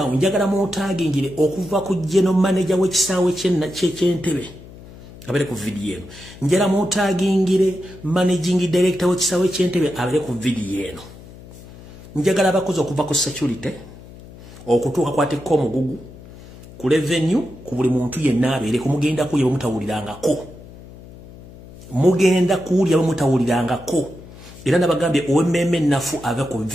njagala mutagingire okuva ku general manager w'ekisaawe ky'Entebbe abere ku video eno njala mutagingire managing director w'ekisaawe ky'Entebbe abere ku video eno njagala abakozi okuva ku security okutuuka kwatekko omugugu ku revenue ku buli muntu yenna abeere kumugenda kuye bamutawulirangako mugenda kuulya bamutawulirangako era nabagambye OMM nafu ave ku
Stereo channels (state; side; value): noise; left; hum, 18 dB below the sound